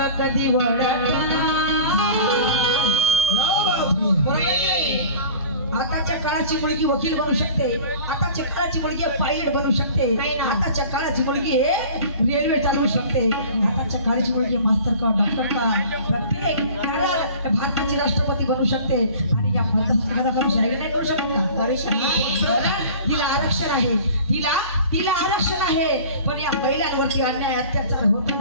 कधी वळणार. आताच्या काळाची मुलगी वकील बनू शकते, आताच्या काळाची मुलगी पायलट बनू शकते, आताच्या काळाची मुलगी रेल्वे चालवू शकते, आताच्या काळाची मुलगी मास्तर का डॉक्टर का प्रत्येक भारताची राष्ट्रपती बनू शकते. आणि या भारताची शाहीर नाही करू शकत का? हिला आरक्षण आहे, तिला आरक्षण आहे. पण या महिलांवरती अन्याय अत्याचार होतो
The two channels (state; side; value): inverted; both; correlation -0.42